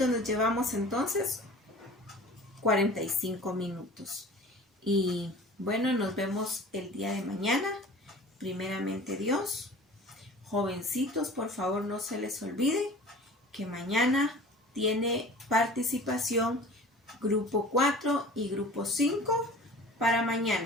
nos llevamos entonces 45 minutos. Y bueno, nos vemos el día de mañana. Primeramente Dios. Jovencitos, por favor no se les olvide que mañana tiene participación grupo 4 y grupo 5 para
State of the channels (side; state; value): both; normal; correlation 0.43